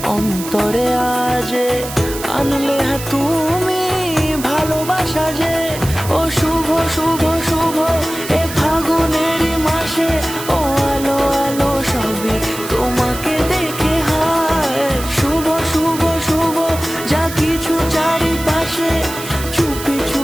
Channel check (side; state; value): right; noise; hiss, 11 dB below the sound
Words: অন্তরে আজে আনলে তুমি ভালোবাসা যে। ও শুভ শুভ